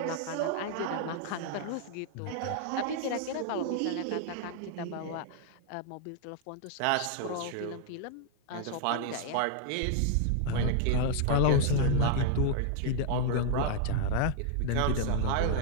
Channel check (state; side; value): different; both; correlation 0.00